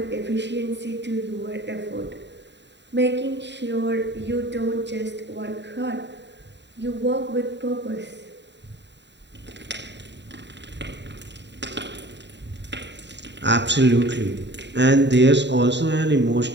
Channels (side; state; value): left; late; 0.52 ms